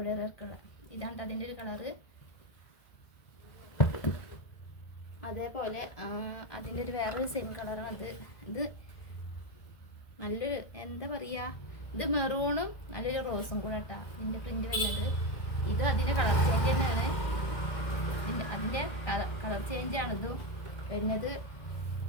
വർക്കുള്ള ഇതാണ് അതിൻ്റെ ഒരു കളറ്. അതേപോലെ അതിൻ്റെ ഒരു വേറൊരു സെയിം കളറാണ് ഇത് നല്ലൊരു എന്താ പറയുക, ഇത് മെറൂണും നല്ലൊരു റോസും കൂടെ കേട്ടോ ഇതിൻ്റെ പ്രിൻ്റ് വരുന്നത്. ഇത് അതിൻ്റെ കളർ ചേഞ്ച് തന്നെയാണ്. അതിൻ്റെ കളർ ചേഞ്ചാണ് ഇത് വരുന്നത്.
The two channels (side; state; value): right; late; 1.7 ms